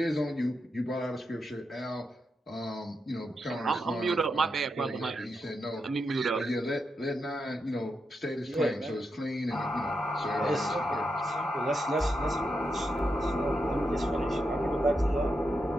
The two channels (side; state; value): both; normal; correlation 0.85